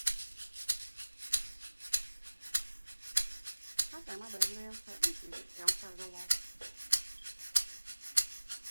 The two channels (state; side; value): inverted; both; correlation -1.00